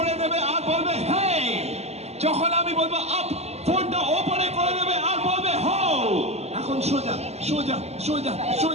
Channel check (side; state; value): left; late; 0.31 ms